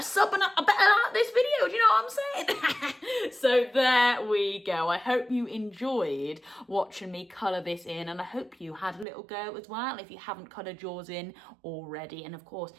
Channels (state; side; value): drops out; left; at 9.1 s